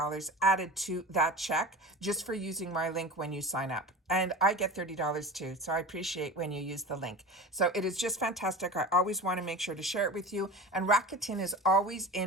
added to that check just for using my link when you sign up. And I get $30 too. So I appreciate when you use the link. So it is just fantastic. I always want to make sure to share it with you. And Rakuten is always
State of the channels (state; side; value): normal; both; correlation 0.32